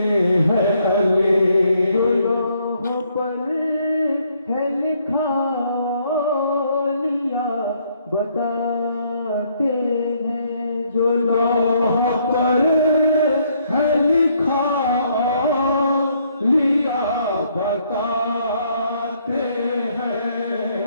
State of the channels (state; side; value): inverted; both; correlation -0.69